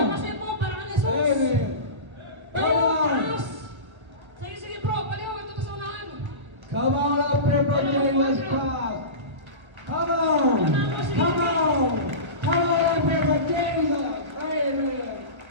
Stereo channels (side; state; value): left; late; 1.3 ms